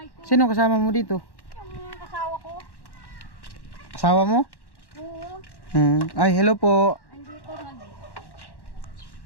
ko. Sino kasama mo dito? Yung asawa ko. Asawa mo? Oo. Ay, hello po. Andito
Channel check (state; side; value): late; right; 1.1 ms